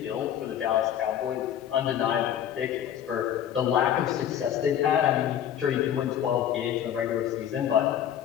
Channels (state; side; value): quieter; right; 10.0 dB